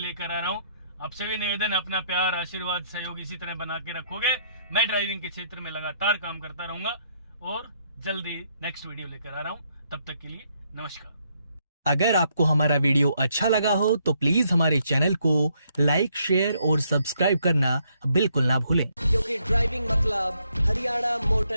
आ रहा हूं। आपसे भी निवेदन, अपना प्यार, आशीर्वाद, सहयोग इसी तरह बना के रखोगे। मैं ड्राइविंग के क्षेत्र में लगातार काम करता रहूंगा और जल्दी नेक्स्ट वीडियो लेकर आ रहा हूं। तब तक के लिए नमस्कार। अगर आपको हमारा वीडियो अच्छा लगा हो तो प्लीज हमारे चैनल को लाइक, शेयर और सब्सक्राइब करना बिल्कुल ना भूलें, क्योंकि ड्राइविंग मतलब Haryana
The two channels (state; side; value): inverted; both; correlation -0.72